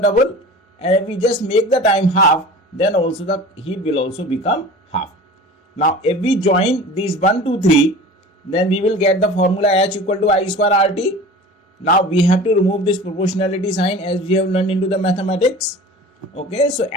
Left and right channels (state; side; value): normal; both; correlation 0.39